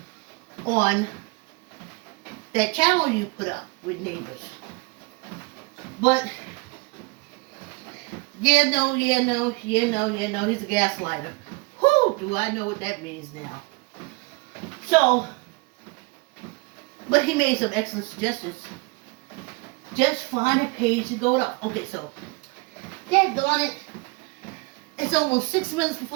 on that channel you put up with neighbors. But he's a gaslighter. Whew, do I know what that means now. So, but he made some excellent suggestions. Just find a page to go up. Okay, so, daggone it. It's almost 6 minutes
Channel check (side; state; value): left; quieter; 27.9 dB